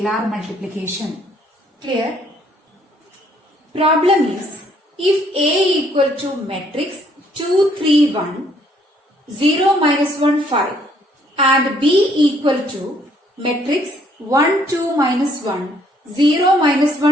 multiplication. Clear? Problem is, if A equal to matrix 2, 3, 1, 0, minus 1, 5 and B equal to matrix 1, 2, minus 1, 0, minus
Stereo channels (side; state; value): both; normal; correlation 0.65